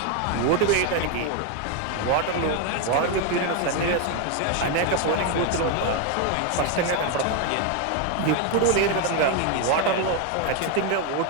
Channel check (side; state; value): both; different; correlation 0.01